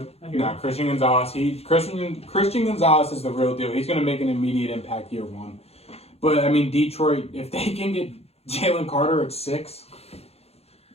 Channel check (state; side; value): late; right; 0.30 ms